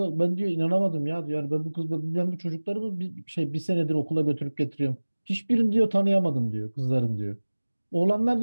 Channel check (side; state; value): both; inverted; correlation -1.00